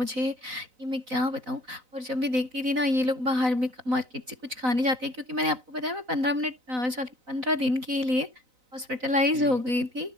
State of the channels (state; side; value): late; left; 4.0 ms